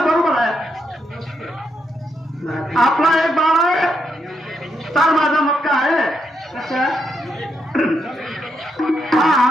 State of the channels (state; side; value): normal; both; correlation 0.80